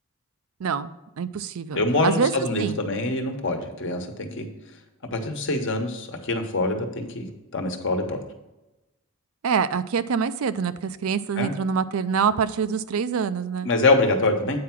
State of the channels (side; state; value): both; normal; correlation -0.07